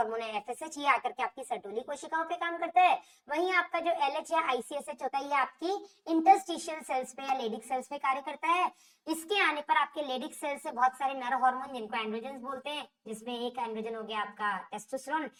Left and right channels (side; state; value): both; identical; correlation 1.00